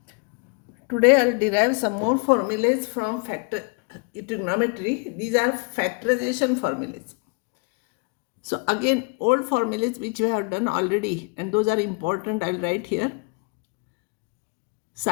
Today I'll derive some more formulas from trigonometry. These are factorization formulas. So again, old formulas which we have done already, and those are important, I'll write here.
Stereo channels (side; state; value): right; quieter; 34.8 dB